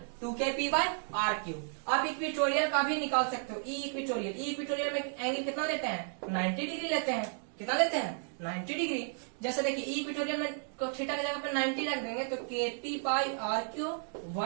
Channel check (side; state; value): left; silent; 55 dB below the other